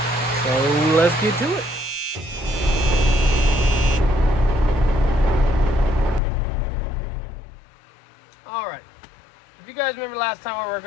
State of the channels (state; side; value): drops out; right; at 6.2 s